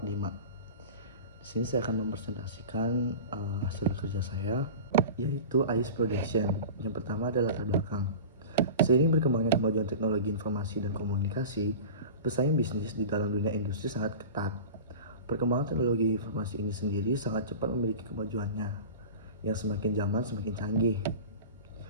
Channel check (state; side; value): inverted; both; correlation -0.33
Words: Di sini saya akan mempresentasikan hasil kerja saya, yaitu AIS Production. Yang pertama adalah latar belakang. Seiring berkembangnya kemajuan teknologi informasi dan komunikasi, pesaing bisnis di dalam dunia industri sangat ketat. Perkembangan teknologi informasi ini sendiri sangat cepat memiliki kemajuannya, yang semakin zaman semakin canggih.